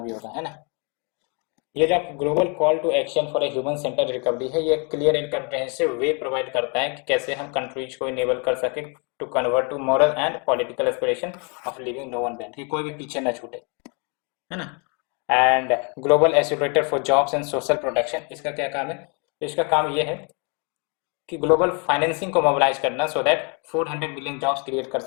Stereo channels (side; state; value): right; quieter; 35.2 dB